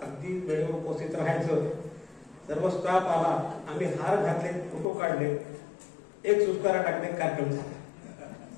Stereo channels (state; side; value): drops out; right; at 4.9 s